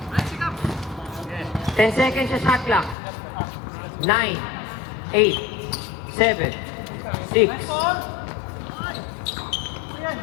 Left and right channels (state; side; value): drops out; right; at 3.0 s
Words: 10 seconds sa shot clock. 9, 8, 7, 6,